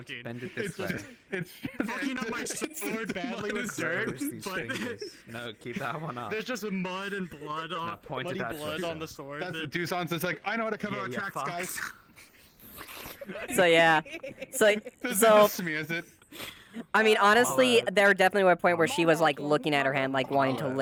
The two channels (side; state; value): both; identical; correlation 1.00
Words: Bend it this way. It's fucking up my sword badly with dirt, Where's these but fingers? No, keep that one up. there's just mud and blood on point it muddy that blood way. on the sword. That's what Duzon's is like, I know how to cover our tracks, guys. So yeah, so This is me, is it? I mean, honestly, there definitely were a point where she was like looking at her hand, like wanting to